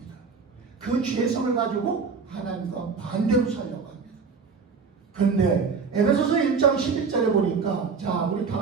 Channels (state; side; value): quieter; left; 5.2 dB